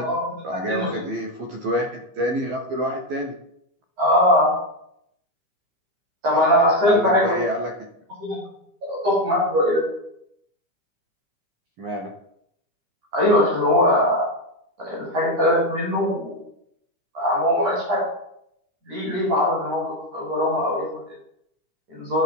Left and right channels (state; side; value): late; left; 12 ms